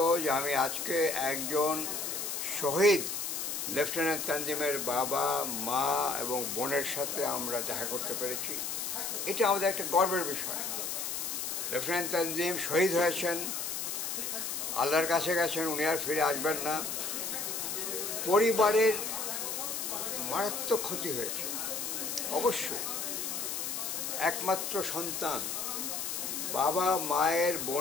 যে আমি আজকে একজন শহীদ লেফটেন্যান্ট তানজিমের বাবা, মা এবং বোনের সাথে আমরা দেখা করতে পেরেছি। এটা আমাদের একটা গর্বের বিষয়। লেফটেন্যান্ট তানজিম শহীদ হয়েছেন, আল্লাহর কাছে গেছেন, উনি আর ফিরে আসবেন না। পরিবারের মারাত্মক ক্ষতি হয়েছে অবশ্যই। একমাত্র সন্তান, বাবা, মায়ের,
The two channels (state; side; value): noise; left; hiss, 3 dB below the sound